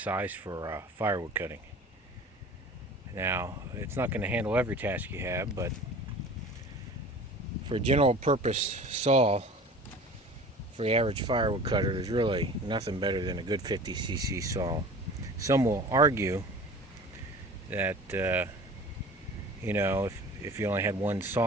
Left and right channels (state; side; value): normal; both; correlation 0.41